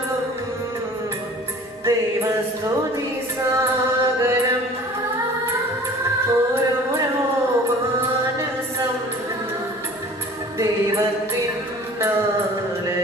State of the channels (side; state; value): both; normal; correlation 0.46